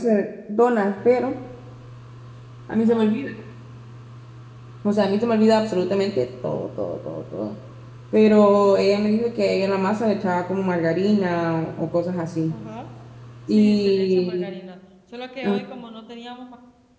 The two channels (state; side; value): identical; both; correlation 1.00